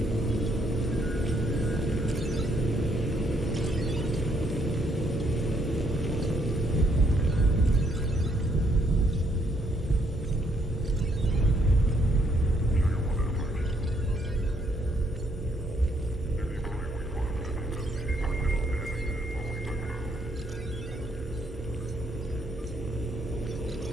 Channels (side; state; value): both; normal; correlation 0.71